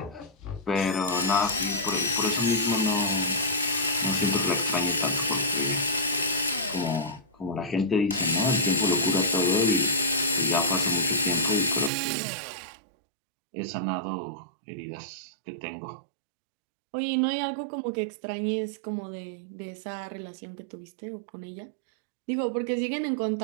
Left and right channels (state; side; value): drops out; left; at 11.9 s